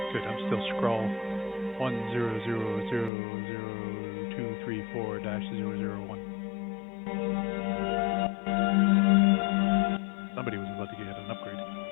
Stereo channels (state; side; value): drops out; right; at 3.1 s